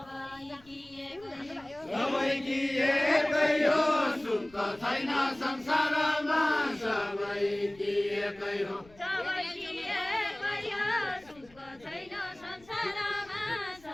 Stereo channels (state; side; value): noise; left; rumble, 26 dB below the sound